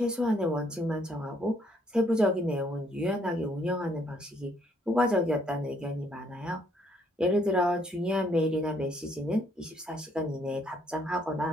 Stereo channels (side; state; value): both; normal; correlation 0.68